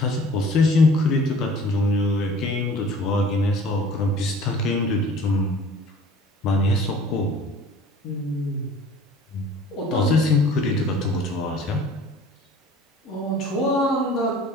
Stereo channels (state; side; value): normal; both; correlation 0.48